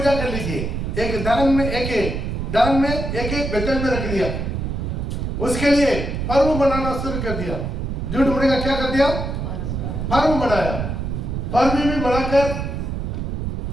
कर लीजिए। एक दान में एक बेतल में रख दिया, उसके लिए पर्व मनाना शुरू कर दिया। झूठ मुड़ी का क्या कर दिया? पर्व मनाया। पर्व भी मनाकर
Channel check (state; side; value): noise; right; rumble, 3 dB below the sound